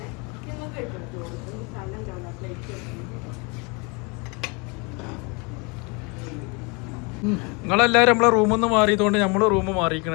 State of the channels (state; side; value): quieter; right; 30.5 dB